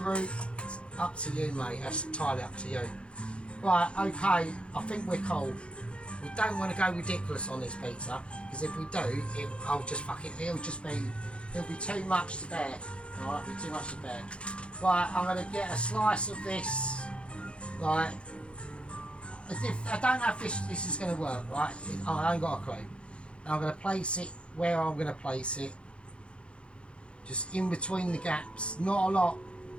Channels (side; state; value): right; late; 0.058 ms